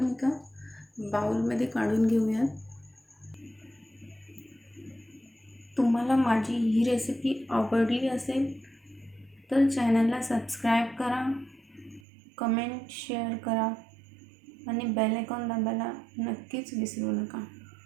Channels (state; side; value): drops out; left; at 12.0 s